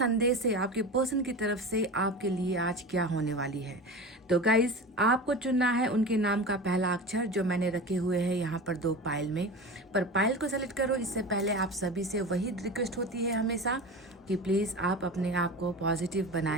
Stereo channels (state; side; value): normal; both; correlation 0.30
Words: है आपके पर्सन की तरफ से आपके लिए आज क्या होने वाली है। तो गाइस, आपको चुनना है उनके नाम का पहला अक्षर जो मैंने रखे हुए हैं यहाँ पर 2 पाइल में। पर पाइल को सेलेक्ट करो इससे पहले आप सभी से वही रिक्वेस्ट होती है हमेशा कि प्लीज़ आप अपने आप को पॉजिटिव